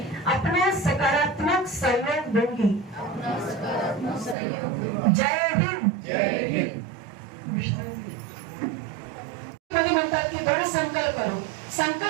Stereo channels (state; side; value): drops out; left; at 4.4 s